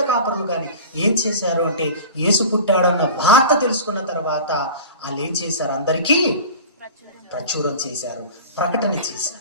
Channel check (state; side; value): inverted; both; correlation -0.36